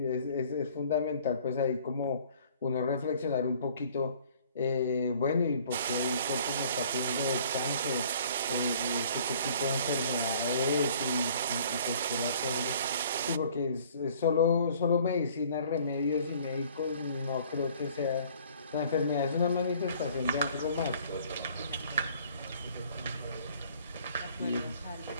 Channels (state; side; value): inverted; both; correlation -0.54